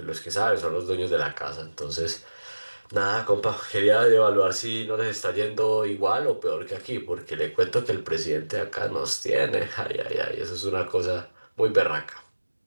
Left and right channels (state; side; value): inverted; both; correlation -1.00